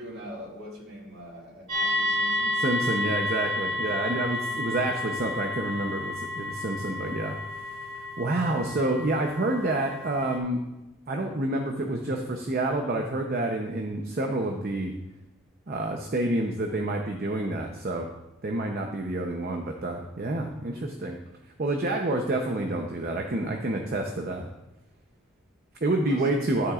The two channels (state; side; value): normal; both; correlation 0.48